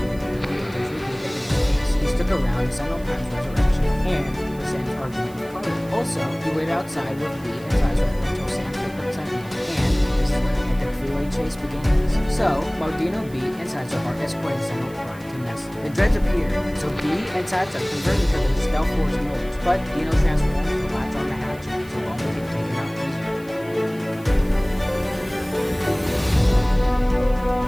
the others reveal that in space, he stuck around several times resurrection and presents argument with Carter. Also, he waited outside with Lee and Sizemore until Sam picked up Sentinel, and this is when the epic freeway chase begins. So, while Dino, B, and Sizemore are escorting Sentinel Prime to Nessie, the dreads appear, so B and Sizemore convert into their stealth force modes, but Dino transforms to latch on the hatchet, so long as he can take him out easier.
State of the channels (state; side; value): noise; right; hiss, 23 dB below the sound